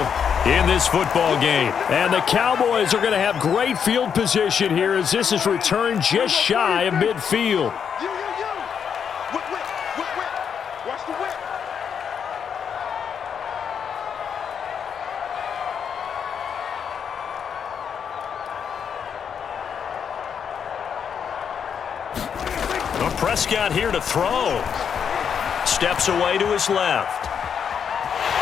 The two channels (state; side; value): quieter; right; 7.4 dB